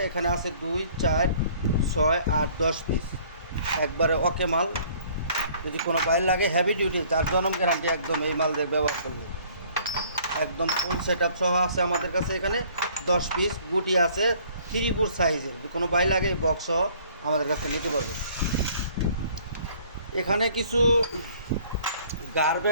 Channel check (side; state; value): both; inverted; correlation -0.56